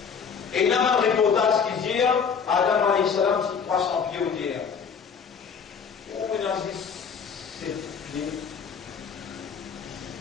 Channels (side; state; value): right; quieter; 6.3 dB